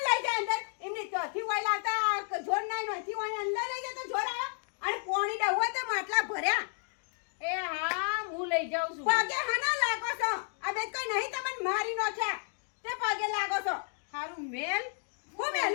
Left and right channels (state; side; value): silent; right; 56 dB below the other